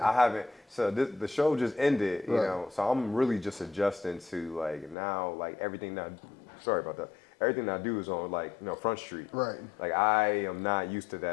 I haven't. So the show just ended, you Right. know. So I'm really just adjusting to like now, like everything that. Sorry about that. Everything I do is on like Front Street. Right. Like I am not used to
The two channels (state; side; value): drops out; right; at 5.0 s